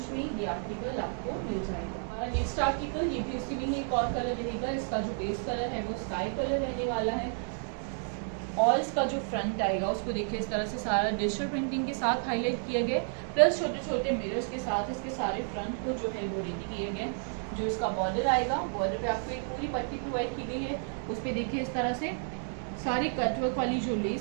में ये आर्टिकल आपको मिल जाएगा। नेक्स्ट आर्टिकल ये भी उसी में एक और कलर रहेगा। इसका जो बेस कलर है वो स्काई कलर रहने वाला है और इसका जो फ्रंट आएगा उसको देखिए इस तरह से सारा डिजिटल प्रिंटिंग के साथ हाईलाइट किया गया, प्लस छोटे छोटे मिरर्स के साथ इसके सारे फ्रंट को जो है वो रेडी किए गए। जो इसका बॉर्डर आएगा, बॉर्डर पे आपको एक पूरी पट्टी प्रोवाइड की गई है, उस पर देखिए इस तरह से सारी कटवर्क वाली जो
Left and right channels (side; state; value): left; silent; 57 dB below the other